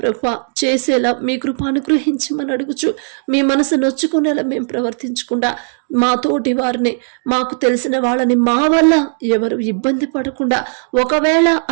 చేసేలా మీ కృప అనుగ్రహించమని అడుగుచు మీ మనసు నొచ్చుకునేలా మేము ప్రవర్తించకుండా మా తోటి వారిని మాకు తెలిసిన వాళ్ళని మా వల్ల ఎవరు ఇబ్బంది పడకుండా ఒకవేళ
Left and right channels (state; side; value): silent; left; digital silence